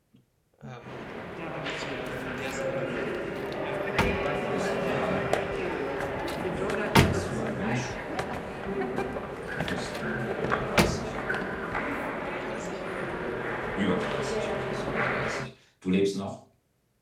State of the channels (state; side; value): identical; both; correlation 1.00